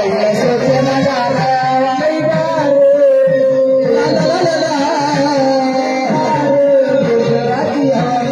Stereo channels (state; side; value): identical; both; correlation 1.00